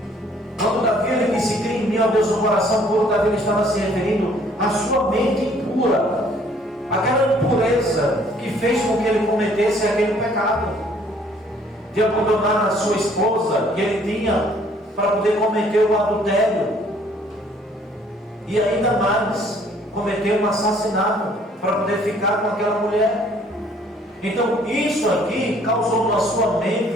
Quando Davi ele disse: cria em mim, ó Deus, um coração puro, Davi ele estava se referindo à sua mente pura, aquela impureza que fez com que ele cometesse aquele pecado de abandonar a sua esposa que ele tinha para poder cometer o adultério, e ainda mais cometer um assassinato para poder ficar com aquela mulher. Então isso aqui causou na sua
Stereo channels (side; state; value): both; normal; correlation 0.60